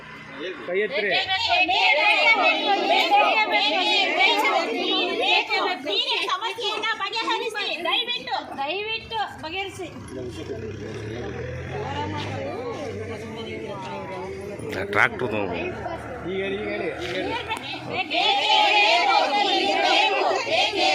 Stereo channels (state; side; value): identical; both; correlation 1.00